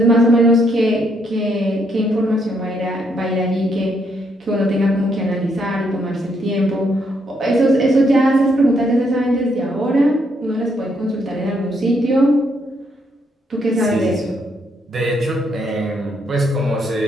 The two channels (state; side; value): normal; both; correlation 0.74